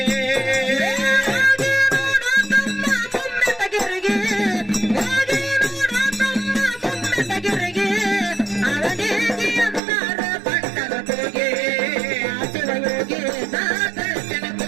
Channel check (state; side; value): drops out; left; at 9.8 s